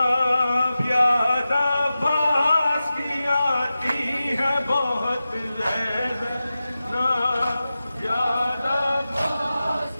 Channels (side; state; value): both; inverted; correlation -0.94